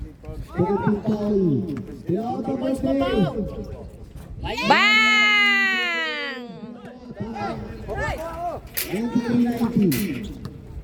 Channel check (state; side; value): identical; both; correlation 1.00